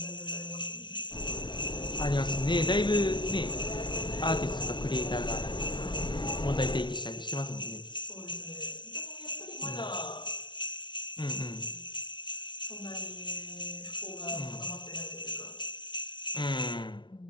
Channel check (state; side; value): late; right; 0.23 ms